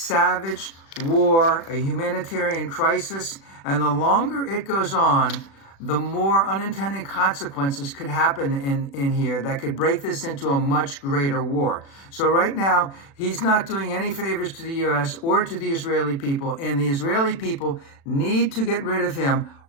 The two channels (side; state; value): right; late; 36 ms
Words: war, a humanitarian crisis. And the longer it goes on, the more unintended consequences could happen in here that could break this into a much greater war. So right now, he's not doing any favors to the U.S. or to the Israeli people, and the Israeli people need to get rid of him